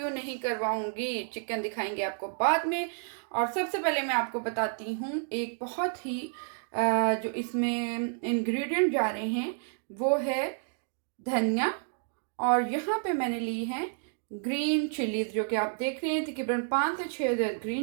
नहीं करवाऊंगी, चिकन दिखाएंगे आपको बाद में। और सबसे पहले मैं आपको बताती हूँ एक बहुत ही जो इसमें इंग्रेडिएंट जा रहे हैं वो है धनिया। और यहाँ पे मैंने ली है ग्रीन चिलीज, जो कि आप देख रहे हैं तकरीबन 5 से 6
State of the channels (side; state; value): left; silent; 58 dB below the other